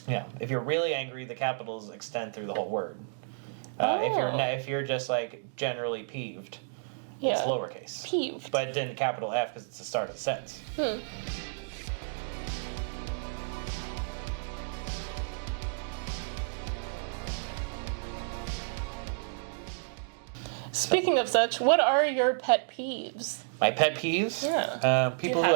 Yeah, if you're really angry, the capitals extend through the whole word. If you're just like generally peeved, it's lowercase. Peeved. But then capital F because it's the start of the sentence. Speaking of such, what are your pet peeves? My pet peeves? Yeah. People who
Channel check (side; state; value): left; silent; digital silence